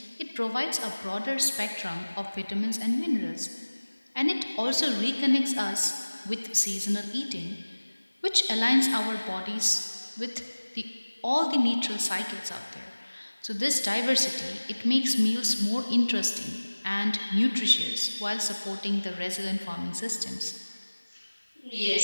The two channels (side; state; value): both; inverted; correlation -1.00